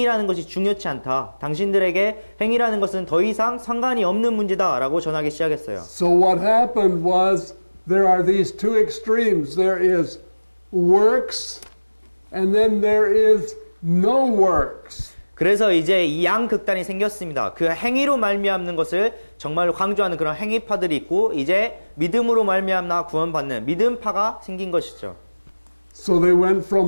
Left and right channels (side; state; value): both; inverted; correlation -1.00